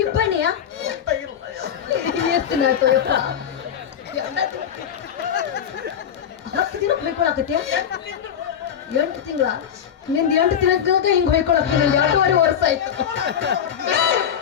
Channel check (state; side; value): quieter; right; 8.7 dB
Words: ಇಬ್ಬನಿಯ ಎಷ್ಟು ನಾಯ್ತು ಯಪ್ಪ 10 ದಿನಕ್ಕೆ ಹೊಯ್ಕೊಳಕತ್ಯ 8 ತಿಂಗಳ ನಿಂದ 8 ತಿಂಗಳಾಗ ಹಿಂಗ್ ಹೊಯ್ಕೊಳಕ ನಿಂದ 2.5 ವರ್ಷ ಆಯ್ತು